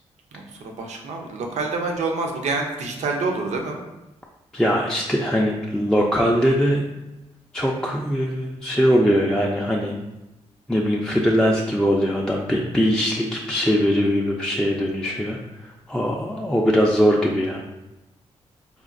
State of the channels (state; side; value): normal; both; correlation 0.80